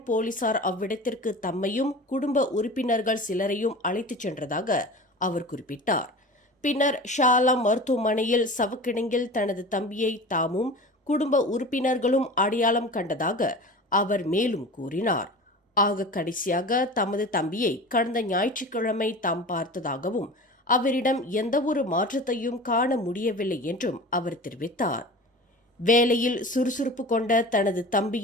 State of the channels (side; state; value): both; normal; correlation 0.35